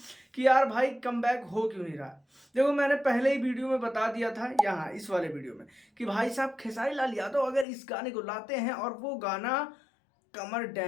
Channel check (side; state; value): right; drops out; at 7.7 s